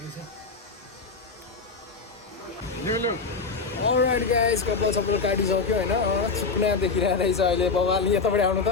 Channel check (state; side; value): quieter; right; 4.5 dB